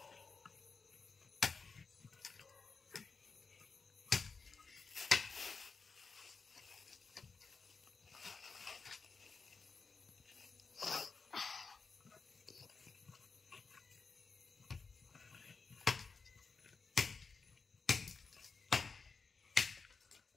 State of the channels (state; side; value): quieter; right; 4.7 dB